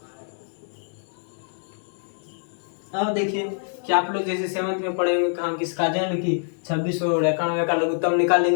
अब देखिए कि आप लोग जैसे 7th में पढ़े होंगे कहा किसका जन्म की 26 और 91 का लघुत्तम निकाल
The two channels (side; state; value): right; silent; digital silence